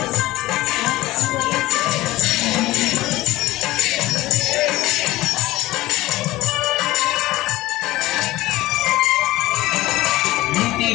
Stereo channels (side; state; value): right; quieter; 17.6 dB